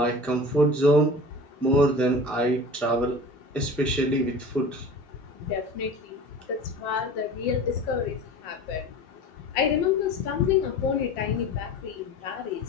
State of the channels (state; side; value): normal; both; correlation 0.37